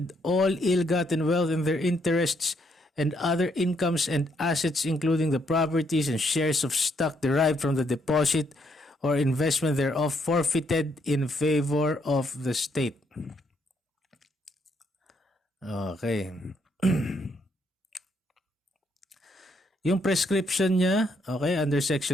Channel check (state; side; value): normal; both; correlation 0.73